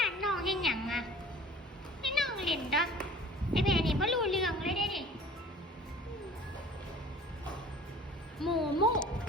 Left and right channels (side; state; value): both; normal; correlation 0.46